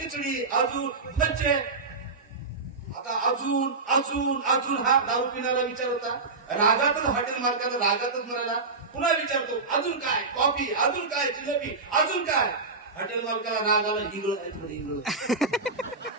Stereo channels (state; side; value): quieter; left; 4.0 dB